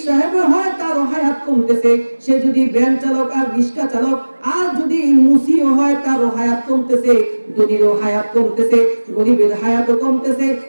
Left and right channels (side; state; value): both; inverted; correlation -1.00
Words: সাহেব হয় তারও হায়াত কমতেছে, সে যদি ভ্যান চালক আর রিক্সা চালক আর যদি মুসিও হয় তারও হায়াত কমতেছে, ধনীরও হায়াত কমতেছে, গরিবের হায়াতও কমতেছে।